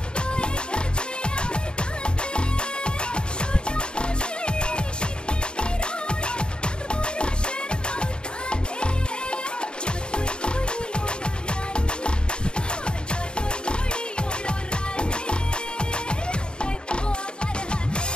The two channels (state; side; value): late; right; 0.050 ms